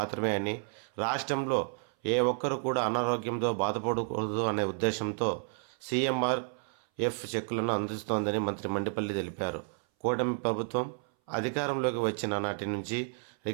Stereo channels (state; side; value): silent; left; 57 dB below the other